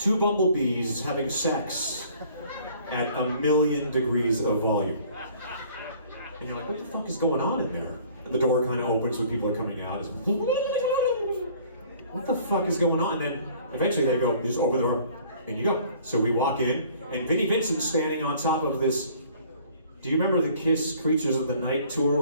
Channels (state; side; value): inverted; both; correlation -0.54